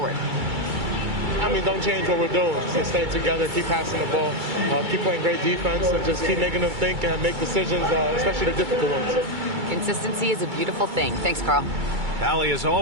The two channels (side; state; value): left; late; 2.3 ms